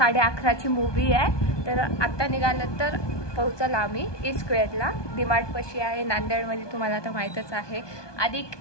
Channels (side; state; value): right; late; 1.2 ms